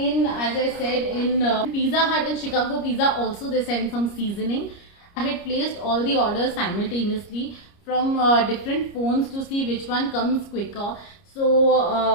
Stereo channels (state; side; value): late; right; 29 ms